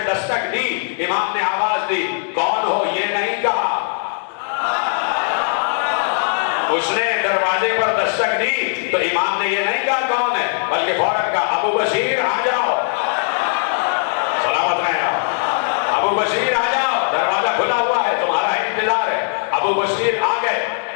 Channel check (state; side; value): silent; right; digital silence